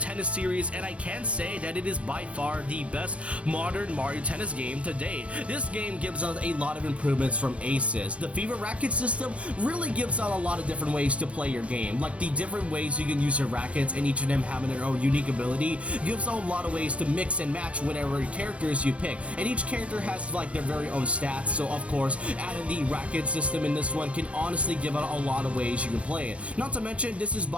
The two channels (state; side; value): late; left; 0.062 ms